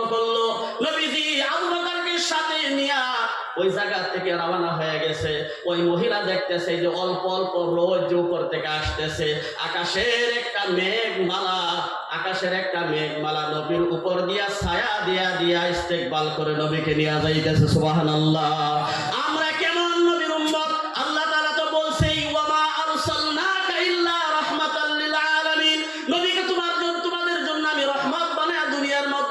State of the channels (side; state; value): both; identical; correlation 1.00